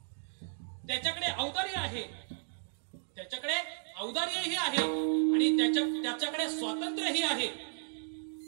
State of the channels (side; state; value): left; silent; digital silence